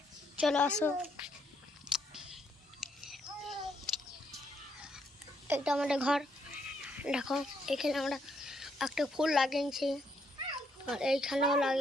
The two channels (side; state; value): both; normal; correlation 0.74